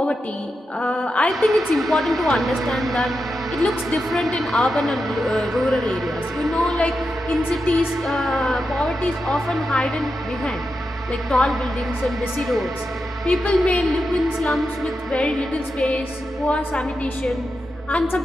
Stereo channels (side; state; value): both; normal; correlation 0.88